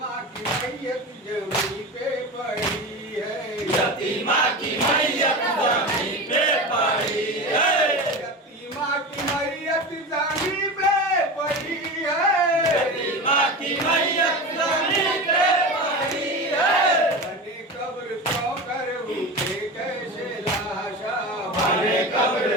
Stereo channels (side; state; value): both; normal; correlation 0.26